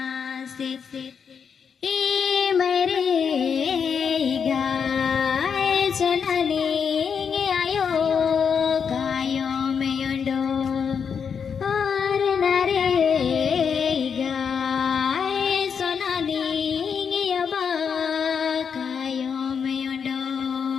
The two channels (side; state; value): right; quieter; 6.7 dB